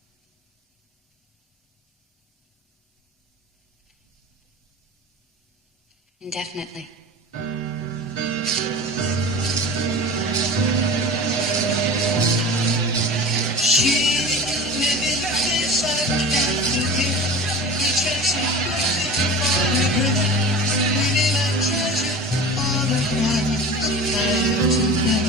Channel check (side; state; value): both; normal; correlation 0.35